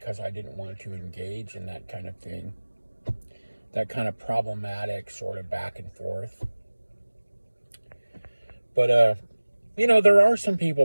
I didn't want to engage in that kind of thing. That kind of problematic sort of back and forth. But, you know, there are some people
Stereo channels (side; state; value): both; inverted; correlation -1.00